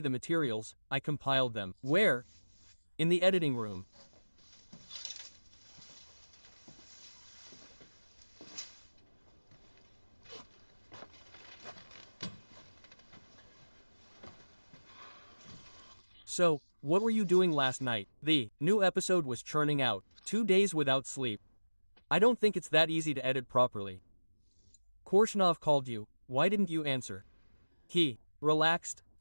the materials, I compiled them. Where? In the editing room. So, what were you doing last night? The new episode was churning out, 2 days without sleep. I don't think it's that easy to edit properly. Korshunov called you, why didn't you answer? He relaxed,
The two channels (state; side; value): inverted; both; correlation -1.00